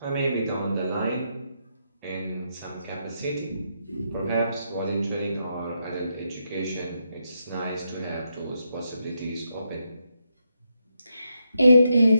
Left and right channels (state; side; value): inverted; both; correlation -0.82